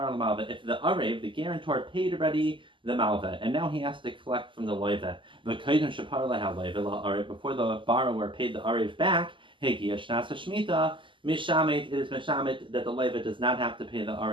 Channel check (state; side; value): late; left; 0.25 ms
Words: l'malva. If the arev, the guarantor, paid already the malva, and now he has to collect from the loiva. V'kaidon shapar lahal loiva. Before the borrower paid the arev back, hegiya shnasa shmita mishamet. It is mishamet that the loiva does not have to pay the